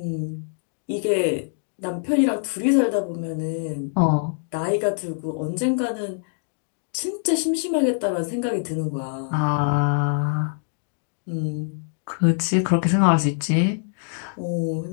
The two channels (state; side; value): silent; right; digital silence